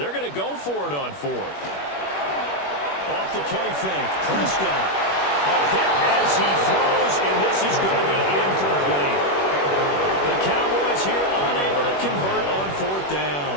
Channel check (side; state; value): right; late; 21 ms